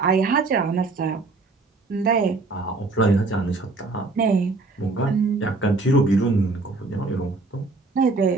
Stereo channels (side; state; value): left; quieter; 3.6 dB